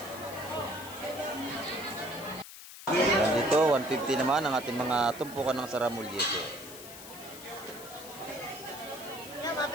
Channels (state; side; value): noise; left; hiss, 14 dB below the sound